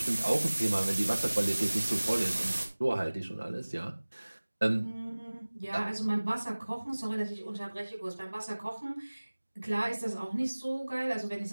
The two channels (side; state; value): both; inverted; correlation -1.00